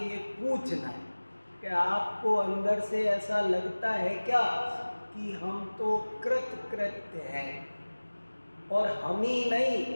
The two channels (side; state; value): both; inverted; correlation -1.00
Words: पूछना है कि आपको अंदर से ऐसा लगता है क्या कि हम तो कृतकृत्य हैं? और हम ही नहीं,